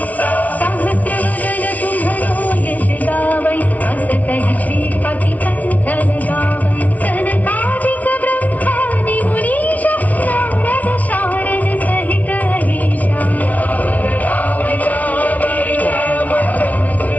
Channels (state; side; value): late; right; 0.072 ms